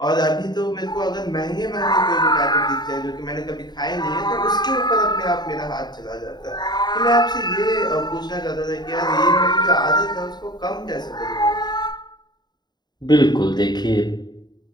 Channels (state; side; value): late; right; 0.20 ms